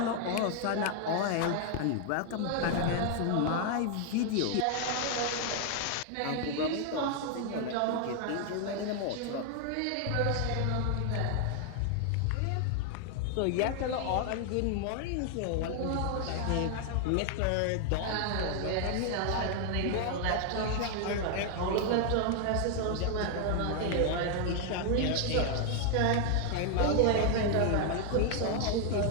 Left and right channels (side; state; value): both; different; correlation 0.00